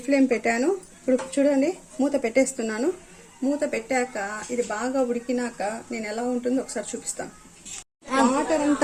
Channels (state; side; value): identical; both; correlation 1.00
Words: ఫ్లేమ్ పెట్టాను. ఇప్పుడు చూడండి మూత పెట్టేస్తున్నాను. మూత పెట్టాక ఇది బాగా ఉడికినాక నేను ఎలా ఉంటుందో ఒకసారి చూపిస్తాను.